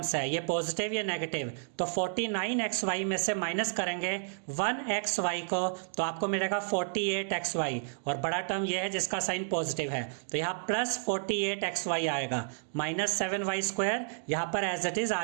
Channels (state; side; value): silent; left; digital silence